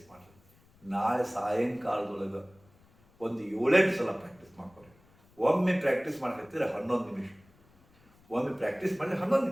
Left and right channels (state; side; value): noise; left; rumble, 30 dB below the sound